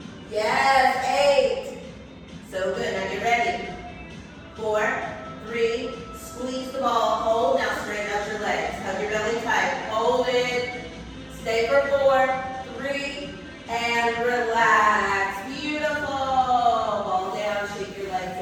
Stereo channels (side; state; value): both; identical; correlation 1.00